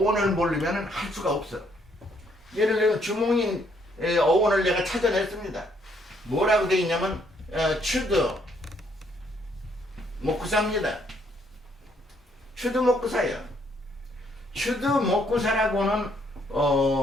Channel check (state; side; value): normal; both; correlation 0.69